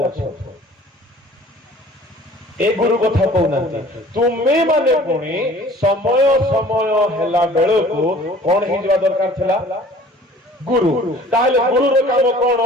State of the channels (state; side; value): normal; both; correlation 0.49